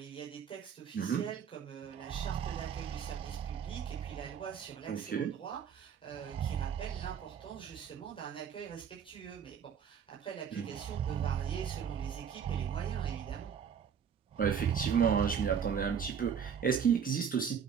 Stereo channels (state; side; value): quieter; left; 7.5 dB